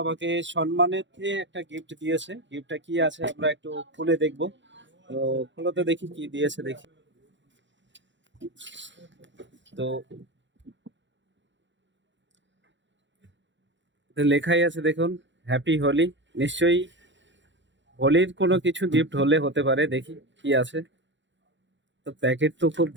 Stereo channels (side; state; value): left; late; 0.54 ms